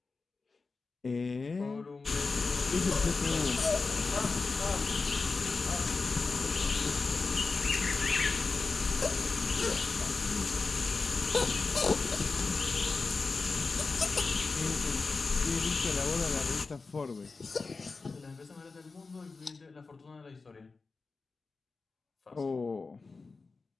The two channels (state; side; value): quieter; right; 4.1 dB